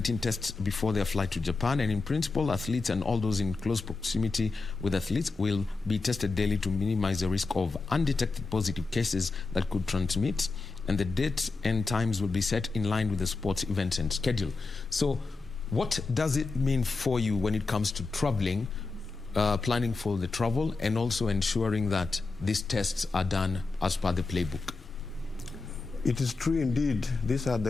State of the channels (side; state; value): right; quieter; 4.0 dB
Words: tests before their flight to Japan, and in principle, athletes and all those in close proximity with athletes will be tested daily to minimize the risk of undetected positive cases that could transmit, and the dates and times will be set in line with the sports event and schedule. So what does it mean for you when it comes to traveling, planning for the travel, and also ensuring that these tests are done as per the playbook? It is true indeed. These are